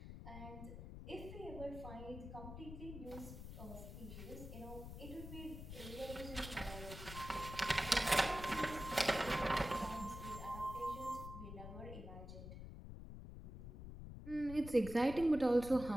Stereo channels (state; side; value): noise; left; rumble, 10 dB below the sound